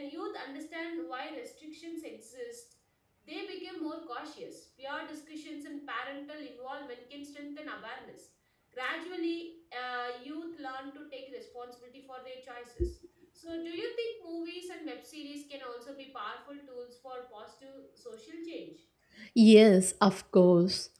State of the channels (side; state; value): both; identical; correlation 1.00